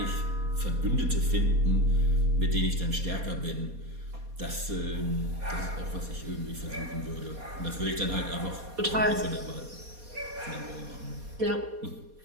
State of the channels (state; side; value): late; left; 4.2 ms